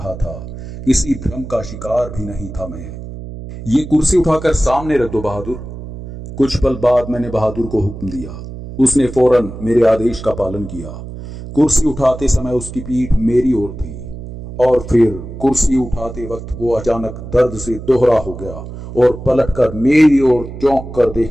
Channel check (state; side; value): noise; right; hum, 11 dB below the sound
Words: था, किसी भ्रम का शिकार भी नहीं था मैं। ये कुर्सी उठाकर सामने रख दो बहादुर। कुछ पल बाद मैंने बहादुर को हुक्म दिया। उसने फौरन मेरे आदेश का पालन किया। कुर्सी उठाते समय उसकी पीठ मेरी ओर थी और फिर कुर्सी उठाते वक्त वो अचानक दर्द से दोहरा हो गया और पलटकर मेरी ओर चौंक कर